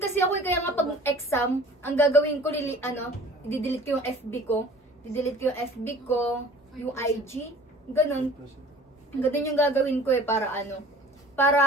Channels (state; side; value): normal; both; correlation 0.47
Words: ako, kaya nga pag exam, ang gagawin ko, i-delete ko yung FB ko, yung IG, ganun. Ganun yung gagawin ko para